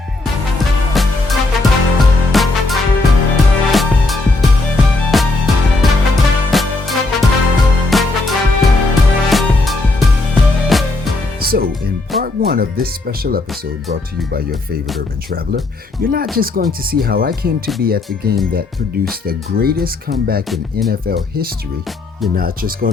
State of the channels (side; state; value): right; quieter; 3.2 dB